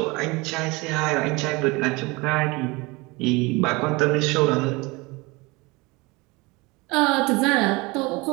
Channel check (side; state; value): left; quieter; 24.6 dB